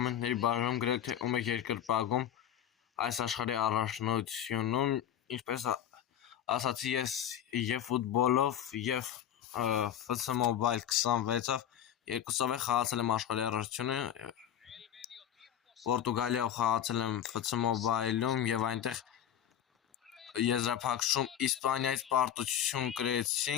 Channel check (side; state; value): right; quieter; 10.2 dB